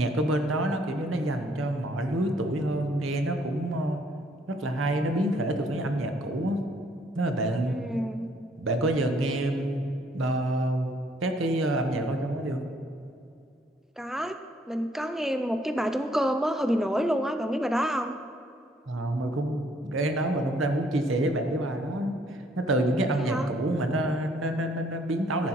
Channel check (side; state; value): both; normal; correlation 0.65